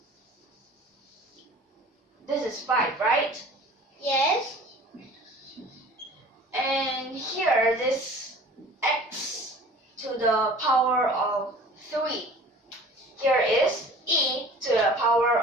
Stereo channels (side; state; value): both; normal; correlation 0.45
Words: This is 5, right? Yes. And here, this x to the power of 3. Here is e to the power